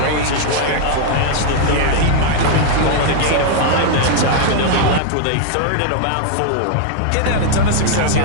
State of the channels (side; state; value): both; different; correlation 0.00